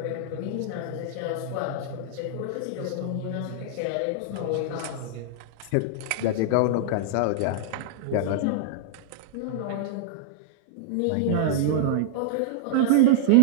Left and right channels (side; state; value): both; different; correlation -0.01